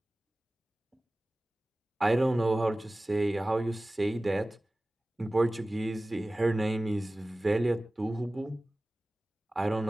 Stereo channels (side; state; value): both; normal; correlation 0.97